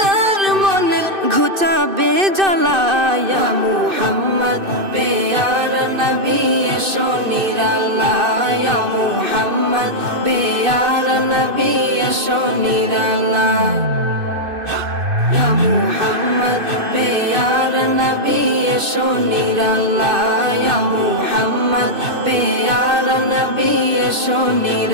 মনের ঘুচাবে জ্বালা, ইয়া মুহাম্মদ প্যারা নবী এসো নিরাল্লাহ, ইয়া মুহাম্মদ প্যারা নবী এসো নিরাল্লাহ, ইয়া মুহাম্মদ প্যারা নবী এসো নিরাল্লাহ, ইয়া মুহাম্মদ প্যারা নবী এসো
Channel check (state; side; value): late; left; 2.6 ms